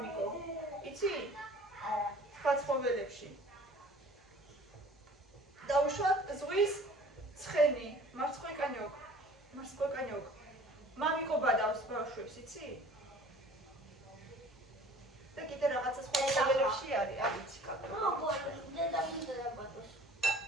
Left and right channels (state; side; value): normal; both; correlation 0.49